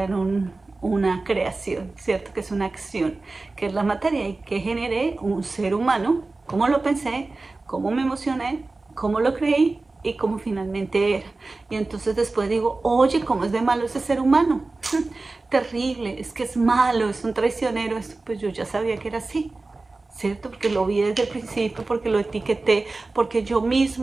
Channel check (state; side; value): quieter; left; 3.4 dB